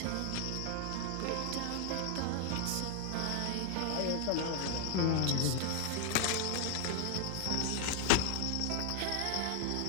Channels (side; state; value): both; different; correlation 0.00